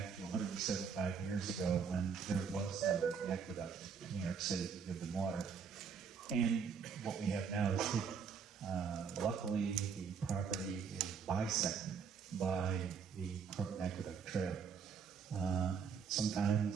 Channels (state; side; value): quieter; left; 6.2 dB